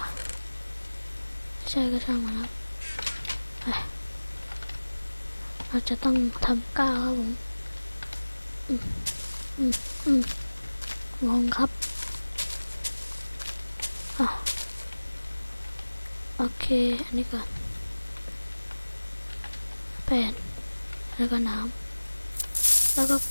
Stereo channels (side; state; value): both; inverted; correlation -1.00